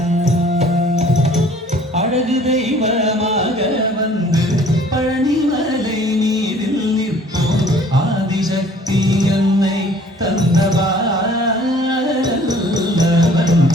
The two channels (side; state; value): both; normal; correlation 0.54